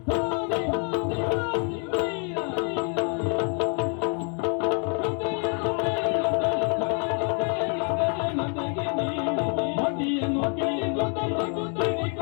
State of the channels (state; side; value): quieter; right; 39.4 dB